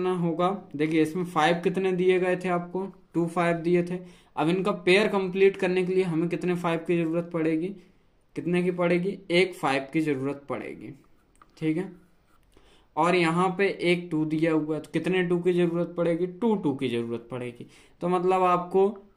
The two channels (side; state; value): both; identical; correlation 1.00